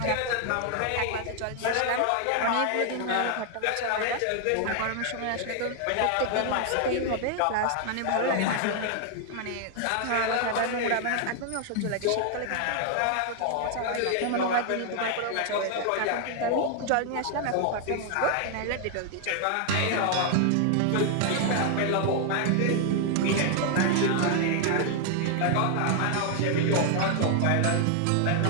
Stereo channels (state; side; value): different; both; correlation 0.00